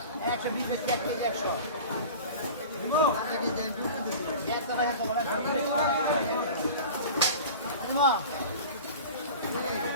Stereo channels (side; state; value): both; inverted; correlation -0.37